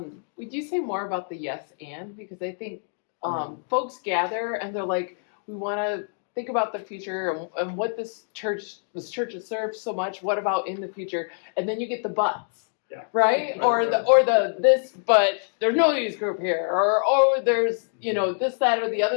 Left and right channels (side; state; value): right; silent; digital silence